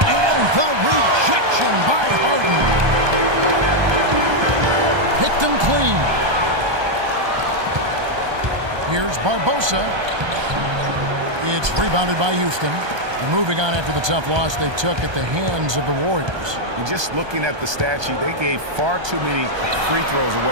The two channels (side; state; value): left; late; 1.2 ms